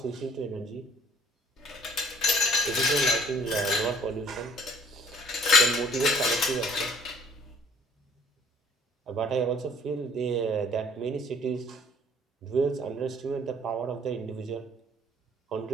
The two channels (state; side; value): normal; both; correlation 0.55